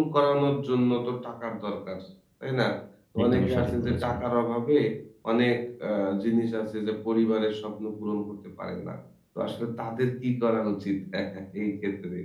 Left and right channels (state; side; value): identical; both; correlation 1.00